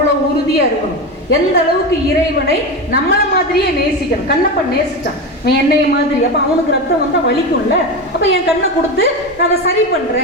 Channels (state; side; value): normal; both; correlation 0.19